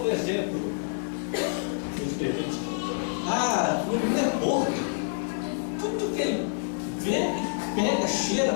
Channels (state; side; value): silent; right; digital silence